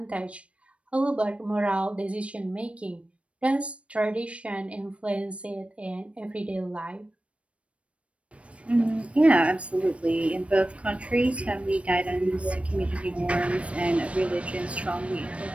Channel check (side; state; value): left; late; 0.062 ms